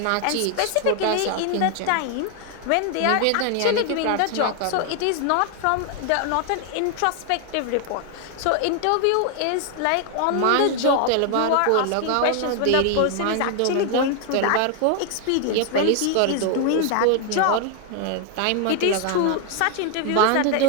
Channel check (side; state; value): both; different; correlation 0.00